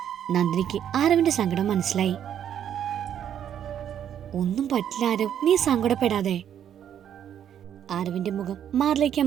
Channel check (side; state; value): left; quieter; 9.6 dB